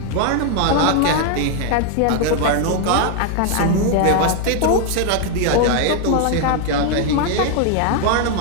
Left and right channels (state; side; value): different; both; correlation 0.00